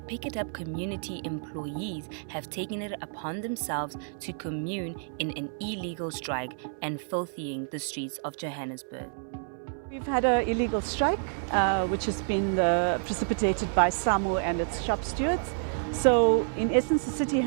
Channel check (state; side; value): silent; left; 58 dB below the other